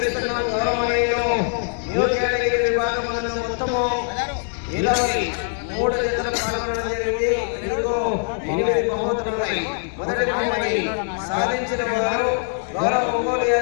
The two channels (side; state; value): right; silent; digital silence